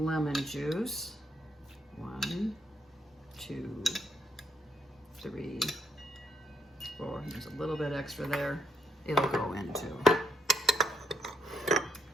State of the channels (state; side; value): normal; both; correlation 0.75